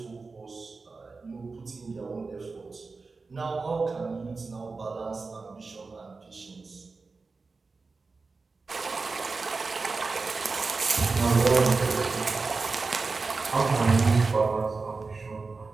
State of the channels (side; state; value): left; quieter; 4.1 dB